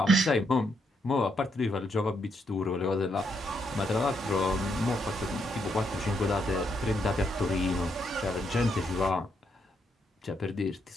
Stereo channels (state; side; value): normal; both; correlation 0.77